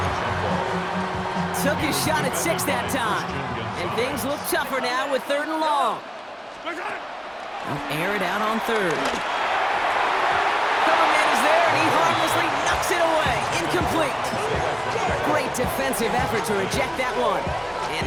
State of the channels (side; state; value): both; identical; correlation 1.00